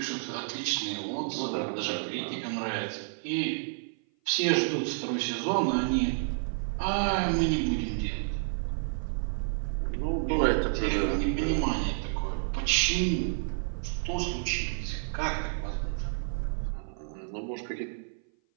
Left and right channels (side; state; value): left; silent; 56 dB below the other